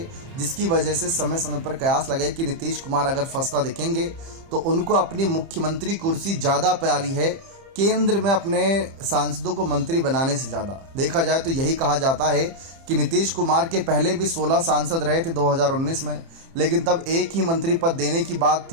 जिसकी वजह से समय समय पर कयास लगे कि नीतीश कुमार अगर फंसता दिखेंगे तो उनको अपनी मुख्यमंत्री कुर्सी ज़्यादा प्यारी है, केंद्र में अपने सांसदों को मंत्री बनाने से ज़्यादा। देखा जाए तो यही कहा जाता है कि नीतीश कुमार के पहले भी 16 सांसद रहे थे 2019 में, लेकिन तब एक ही मंत्री पद देने की बात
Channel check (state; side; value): late; left; 30 ms